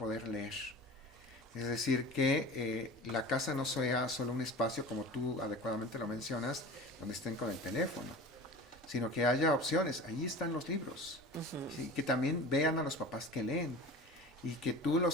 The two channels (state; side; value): normal; both; correlation 0.36